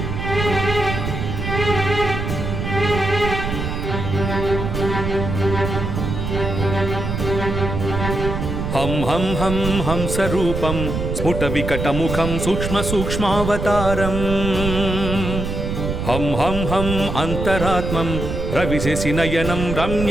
हं हं हं हंसरूपं स्फुटविकटमुखं सूक्ष्मसूक्ष्मावतारम् हं हं हं अन्तरात्मं रविशशिनयनं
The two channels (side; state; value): right; noise; rumble, 3 dB below the sound